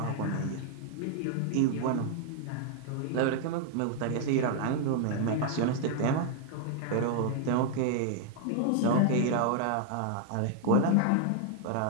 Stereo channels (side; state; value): both; different; correlation 0.00